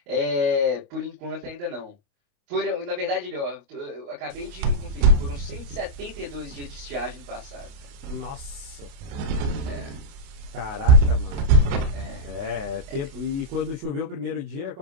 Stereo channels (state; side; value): late; left; 29 ms